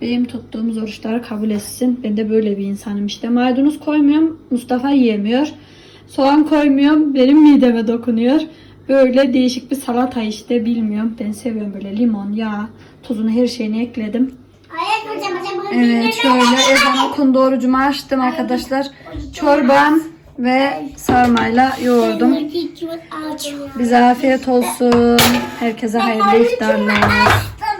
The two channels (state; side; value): identical; both; correlation 1.00